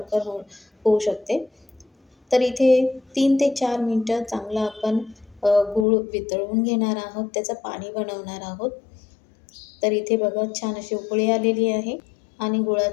होऊ शकते. तर इथे 3 ते 4 मिनिटं चांगलं आपण गूळ वितळवून घेणार आहोत, त्याचं पाणी बनवणार आहोत. तर इथे बघा, छान अशी उकळी आलेली आहे आणि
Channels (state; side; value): drops out; right; at 5.9 s